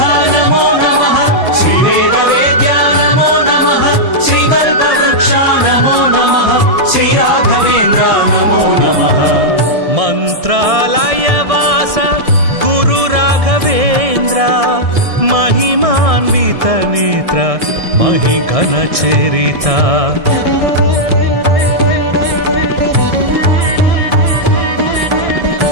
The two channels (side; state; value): left; late; 1.6 ms